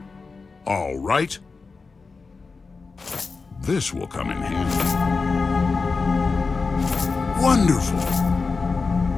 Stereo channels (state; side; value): quieter; right; 4.4 dB